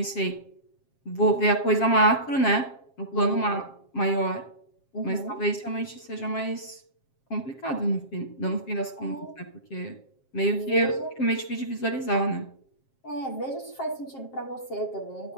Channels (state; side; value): late; right; 7.5 ms